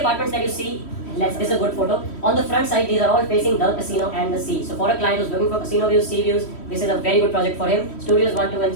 that you see, this is a good photo. On the front side, these are all facing the casino and the sea. So for a client who's looking for casino views, sea views, this is a very good project for him. Studios 1, 2 and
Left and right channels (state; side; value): late; right; 3.1 ms